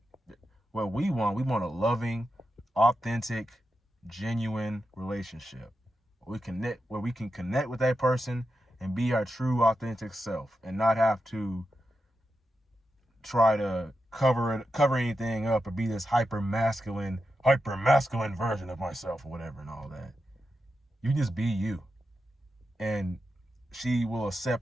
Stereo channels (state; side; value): normal; both; correlation 0.89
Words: what we want a loving, authentic, genuine relationship where we can connect with that person and be our true, authentic self and not have to try to cover anything up or be this hyper masculine version of myself or whatever and all that. You just be you, and she will